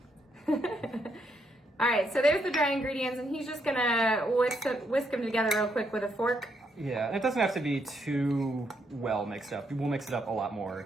All right, so there's the dry ingredients, and he's just gonna whisk them together real quick with a fork. Yeah, and it doesn't have to be too well mixed up. We'll mix it up a lot more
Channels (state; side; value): normal; both; correlation 0.76